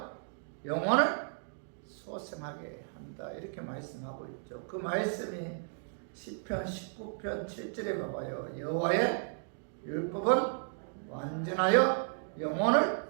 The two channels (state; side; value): silent; left; digital silence